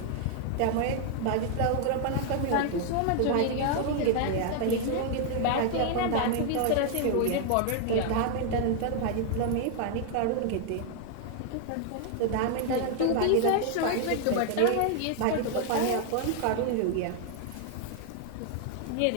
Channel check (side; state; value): both; different; correlation 0.00